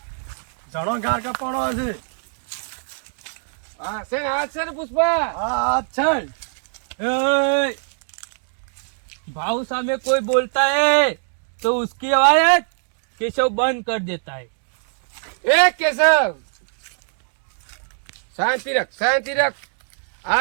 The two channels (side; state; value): left; silent; digital silence